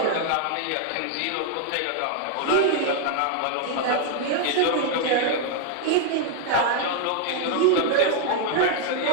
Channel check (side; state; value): both; different; correlation 0.00